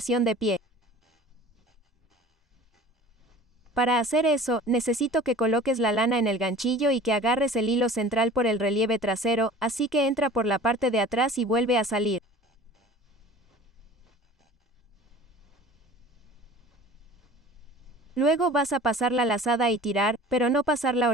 de pie. Para hacer eso, necesito que coloques la lana en el ganchillo y que agarres el hilo central por el relieve trasero, así que entra por la parte de atrás y vuelve a salir. Luego vas a pasar la lazada y tirar, pero no pasar la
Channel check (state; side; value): normal; both; correlation 0.43